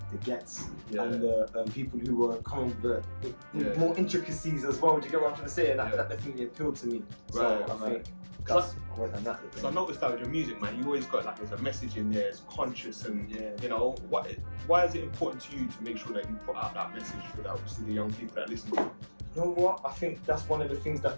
gets and the people who were coming with more intricacies as well. Do you get what I'm trying to say? And that definitely appealed to me. Right. So I think that's I went on that. So I noticed that with your music, man, you always got like there's a message in there, it's conscious, and Yeah. you know, why is it important to you to make sure that you put out that message for that, obviously the young people that listen to you? You know what? I think that's one of the things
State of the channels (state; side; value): inverted; both; correlation -1.00